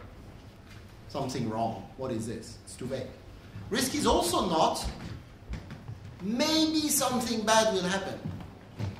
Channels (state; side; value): identical; both; correlation 1.00